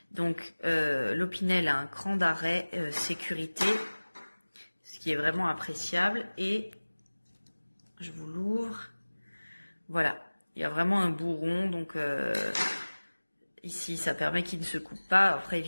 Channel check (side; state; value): both; inverted; correlation -1.00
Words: Donc l'Opinel a un cran d'arrêt sécurité, ce qui est vraiment appréciable. Et je vous l'ouvre. Voilà, il y a vraiment un bourron, donc ici ça permet qu'il ne se coupe pas. Après